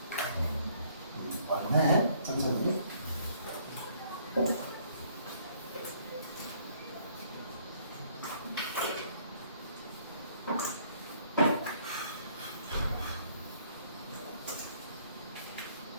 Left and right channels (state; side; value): inverted; both; correlation -0.63